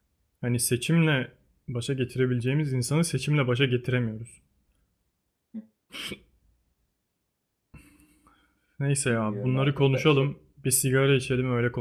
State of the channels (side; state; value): both; identical; correlation 1.00